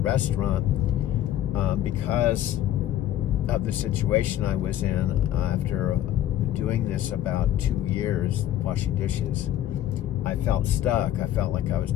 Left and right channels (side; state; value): right; quieter; 12.3 dB